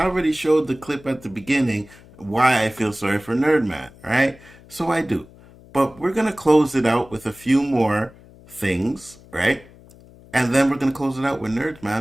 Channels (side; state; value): left; noise; hum, 23 dB below the sound